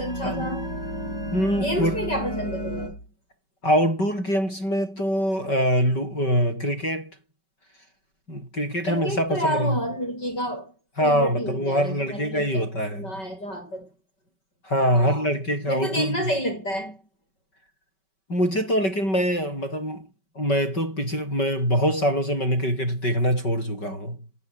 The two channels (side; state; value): right; late; 5.2 ms